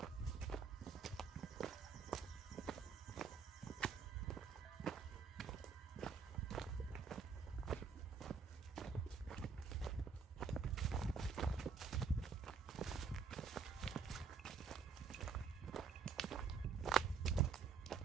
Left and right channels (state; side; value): quieter; left; 5.6 dB